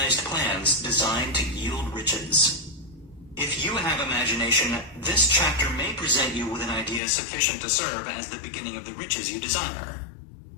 plans designed to yield riches. If you have imagination, this chapter may present you with an idea sufficient to serve as the beginning of the riches you desire.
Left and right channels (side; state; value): right; drops out; at 7.0 s